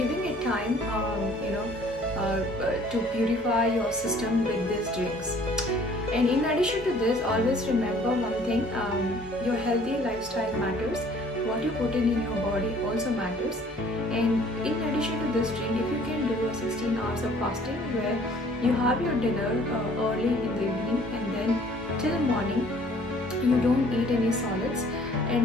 it time to purify your system with these drinks. And in addition to this, always remember one thing, your healthy lifestyle matters. What you put in your body also matters. And in addition to this drink, if you can do a 16 hours of fasting where you have your dinner early in the evening and then till morning you don't eat any solids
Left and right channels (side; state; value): both; normal; correlation 0.55